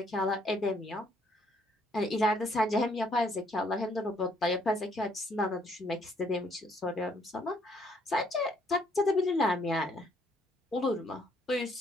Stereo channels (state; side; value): normal; both; correlation 0.67